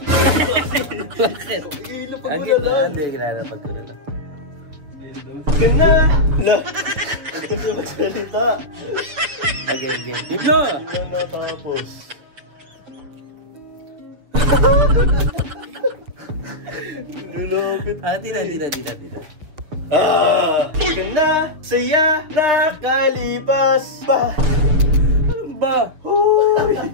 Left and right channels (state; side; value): late; left; 7.1 ms